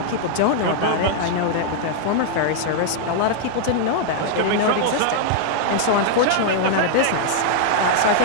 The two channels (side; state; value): both; different; correlation -0.01